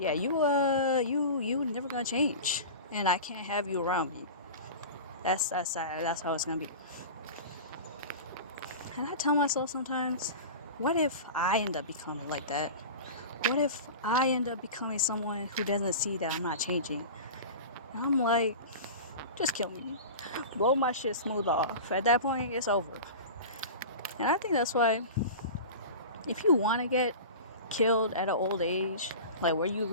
you never gonna change, and I can't have you around me. That's how it's gonna be. And I tell myself sometimes, what if I end up becoming like that? What if I end up becoming someone who doesn't see that I'm not changing? And I'm like, just kill me. Blow my shit smooth off. At that point, it's over. And I think that's why, if you want to get killed at an old age, like where you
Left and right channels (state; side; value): inverted; both; correlation -0.32